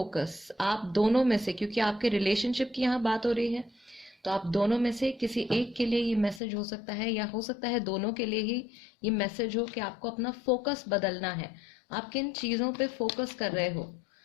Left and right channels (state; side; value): drops out; right; at 6.4 s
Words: आप दोनों में से, क्योंकि आपके रिलेशनशिप की यहाँ बात हो रही है, तो आप दोनों में से किसी एक के लिए ये मैसेज हो सकता है या हो सकता है दोनों के लिए ही ये मैसेज हो कि आपको अपना फोकस बदलना है। आप किन चीज़ों पे फोकस कर रहे हो,